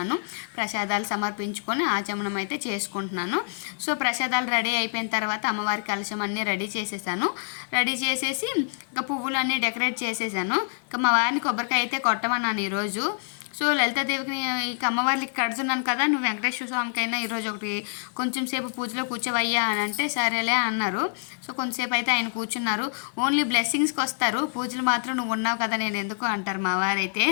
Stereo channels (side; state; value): right; silent; 61 dB below the other